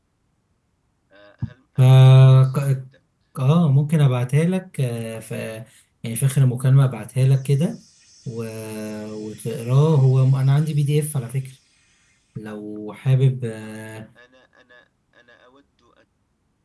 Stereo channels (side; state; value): both; identical; correlation 1.00